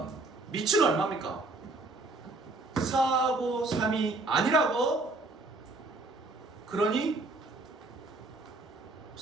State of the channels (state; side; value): quieter; left; 3.2 dB